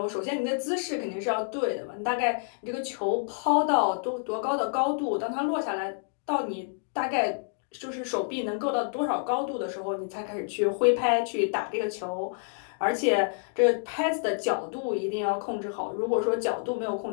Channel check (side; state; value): right; silent; digital silence